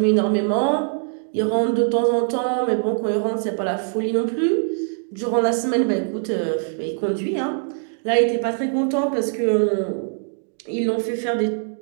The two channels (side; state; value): left; silent; digital silence